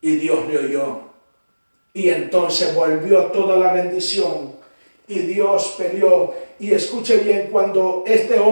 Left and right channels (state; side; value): inverted; both; correlation -1.00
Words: y Dios le oyó. Y entonces volvió toda la bendición, y Dios peleó. Y escuche bien, cuando este